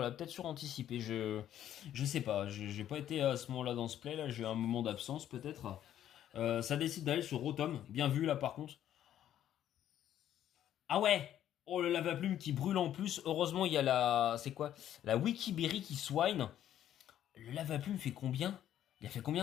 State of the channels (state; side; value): quieter; right; 11.2 dB